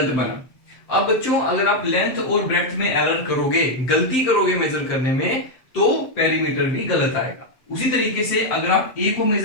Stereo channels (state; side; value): late; right; 7.8 ms